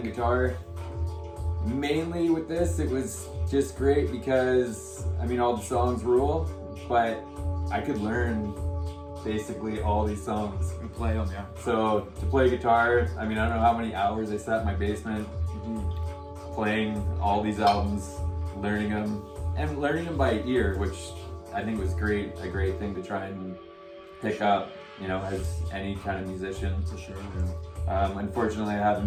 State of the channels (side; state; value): both; identical; correlation 1.00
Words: guitar. Mainly with this, it was just great because all the songs rule, but I could learn basically all these songs We play them, yeah. So to play guitar, I don't know how many hours I sat in my basement playing all these albums, learning them by ear, which I think was a great thing to try and pick up, as any kind of musician. For sure, yeah. Unfortunately, I have